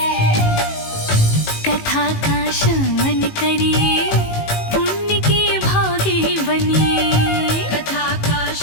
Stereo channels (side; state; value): right; late; 18 ms